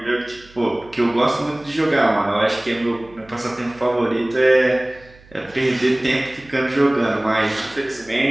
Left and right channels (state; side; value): noise; right; hum, 25 dB below the sound